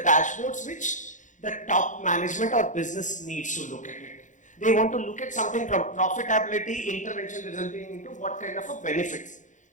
which the top management or business needs to look at it. They want to look at something from profitability, intervention resulting into what kind of a benefits.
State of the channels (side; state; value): right; late; 0.36 ms